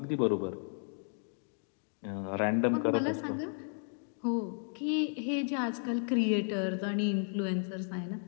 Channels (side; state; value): right; silent; 55 dB below the other